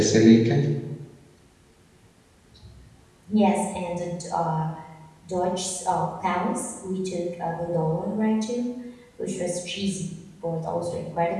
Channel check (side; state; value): both; identical; correlation 1.00